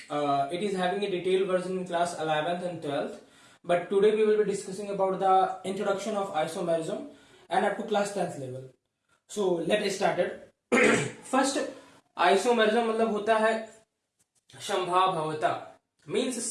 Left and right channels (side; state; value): both; identical; correlation 1.00